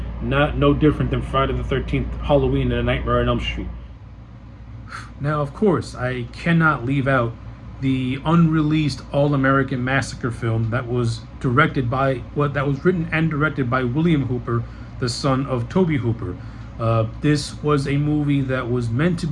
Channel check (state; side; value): identical; both; correlation 1.00